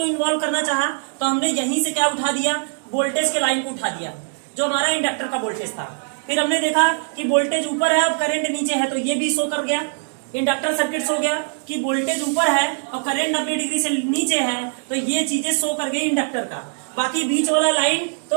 इन्वॉल्व करना चाहा, तो हमने यहीं से क्या उठा दिया? वोल्टेज के लाइन को उठा दिया, जो हमारा इंडक्टर का वोल्टेज था। फिर हमने देखा कि वोल्टेज ऊपर है और करंट नीचे है, तो ये भी शो कर गया। इंडक्टर सर्किट हो गया कि वोल्टेज ऊपर है और करंट 90 डिग्री से नीचे है, तो ये चीजें शो कर गई इंडक्टर का। बाकी बीच वाला लाइन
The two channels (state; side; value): silent; left; digital silence